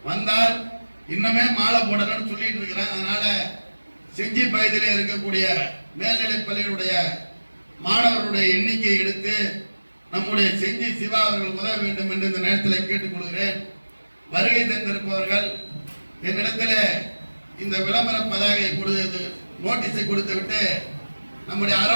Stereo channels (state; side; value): inverted; both; correlation -1.00